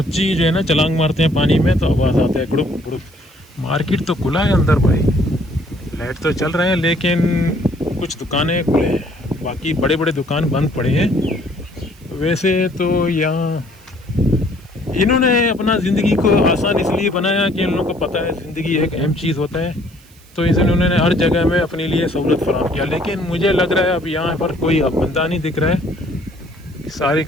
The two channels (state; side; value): noise; right; hiss, 28 dB below the sound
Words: जो है ना छलांग मारते हैं पानी में तो आवाज़ आता है गुड़ुक गुड़ुक। मार्केट तो खुला है अंदर भाई, लाइट तो चल रहे हैं लेकिन कुछ दुकानें खुले हैं, बाकी बड़े बड़े दुकान बंद पड़े हैं। वैसे तो यहाँ इन्होंने अपना ज़िंदगी को आसान इसलिए बनाया कि इन लोगों को पता है ज़िंदगी एक अहम चीज़ होता है, तो इसलिए उन्होंने हर जगह में अपने लिए सहूलत फराहम किया। लेकिन मुझे लग रहा है अब यहाँ पर कोई अब बंदा नहीं दिख रहा है, सारे